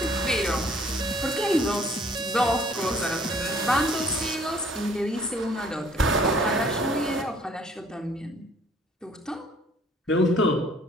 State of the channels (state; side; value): normal; both; correlation 0.58